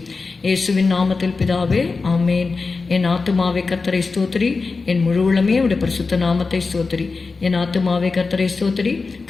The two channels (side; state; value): right; quieter; 4.2 dB